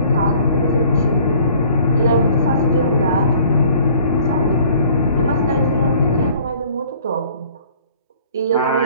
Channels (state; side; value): inverted; both; correlation -0.54